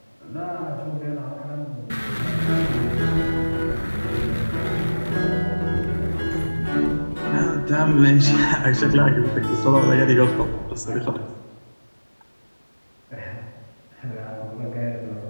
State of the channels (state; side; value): inverted; both; correlation -1.00